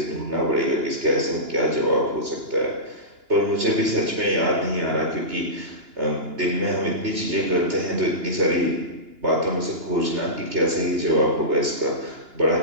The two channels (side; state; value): left; late; 2.9 ms